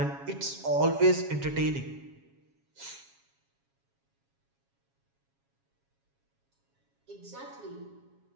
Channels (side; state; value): left; late; 7.3 ms